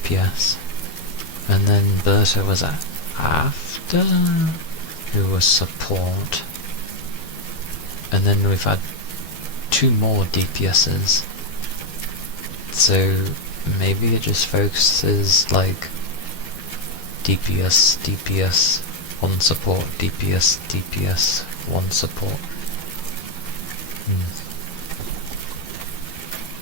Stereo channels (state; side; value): late; right; 12 ms